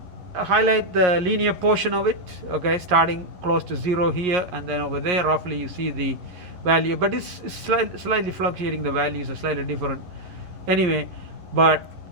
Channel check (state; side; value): late; left; 11 ms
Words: highlight the linear portion of it, okay, starting close to 0 here, and then over there roughly you see the value, but it's slightly fluctuating, the values are slightly different anyway, but